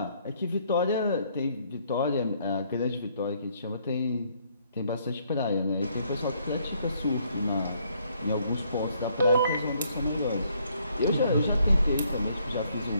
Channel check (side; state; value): both; inverted; correlation -0.68